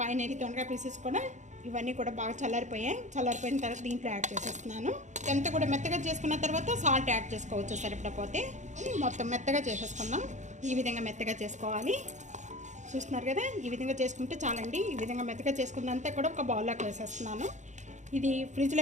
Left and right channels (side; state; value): left; late; 0.35 ms